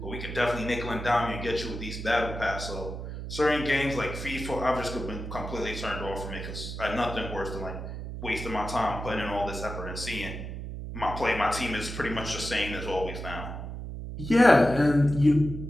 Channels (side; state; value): right; noise; hum, 7 dB below the sound